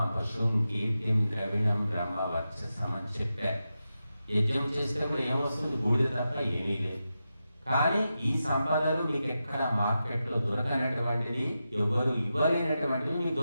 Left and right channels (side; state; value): both; inverted; correlation -0.90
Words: పశుం కీర్తిం ద్రవిణం బ్రహ్మవర్చసం అని చెప్పారు. యజ్ఞం చేసేటప్పుడు ఏమొస్తుంది? బూడిద తప్ప ఏమీ లేదు. కానీ ఈ సంపదలు మీకు ఎక్కడ మార్కెట్లో దొరకనటువంటిది, ఎవరు ఇవ్వలేనటువంటివి మీకు